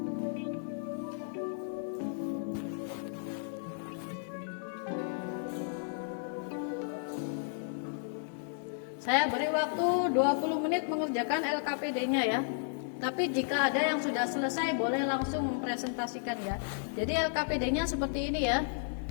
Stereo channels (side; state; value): right; silent; digital silence